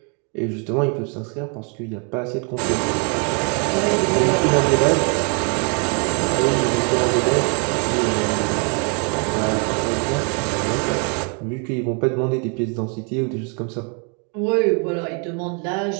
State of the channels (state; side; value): quieter; left; 37.6 dB